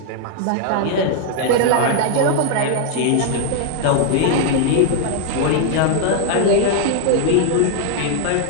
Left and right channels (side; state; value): both; different; correlation 0.00